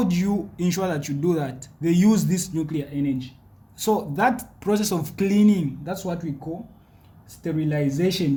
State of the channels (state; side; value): identical; both; correlation 1.00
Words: do you ensure that you do that? They use this nuclear energy. So that process of cleaning, that's what we call